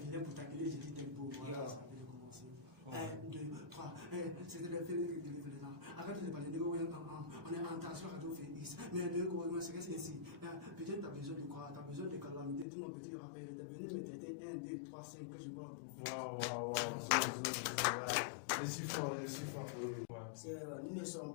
venais pour t'accueillir, j'ai dit tempo. Voilà, ça avait commencé. 1, 2, 3. C'était le fait de là. Arrête de parler de on est en tension radio Félix. Mais de quoi, c'est que c'est ici. Peut-être tu as besoin de quoi? Tu as besoin de calamité. Tout mon petit rappel, tu es venu me traiter 1, 2, 3, 5 que je parle pour. Waouh. Je suis fort. Nous ne sommes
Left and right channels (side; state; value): right; drops out; at 12.7 s